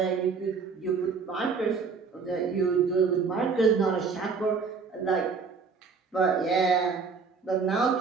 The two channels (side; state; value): left; quieter; 5.1 dB